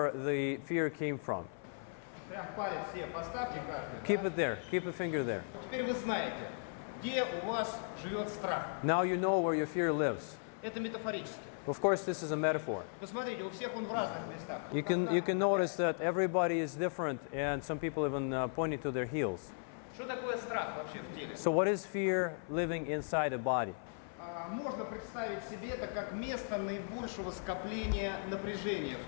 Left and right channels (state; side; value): silent; right; 53 dB below the other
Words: the fear came from. Прям палец все поставьте каждый. Keep it there. Keep a finger there. Теперь вы знаете, где у вас живет страх. Now you know where your fear lives. Это метафорически. Of course, this is a metaphor. Посмотрите, у всех он в разных местах. You can notice that everybody is different, and some people even pointing to their heels. Что такое страх вообще в теле? So what is fear living inside a body? Можно представить себе это как место наибольшего скопления напряжения